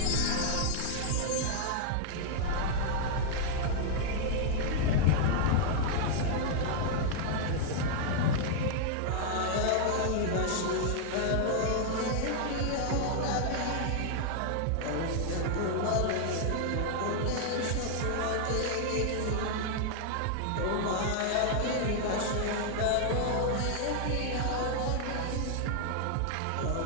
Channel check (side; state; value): both; different; correlation -0.01